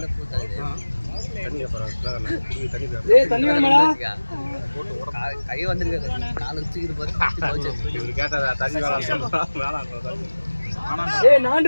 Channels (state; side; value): inverted; both; correlation -1.00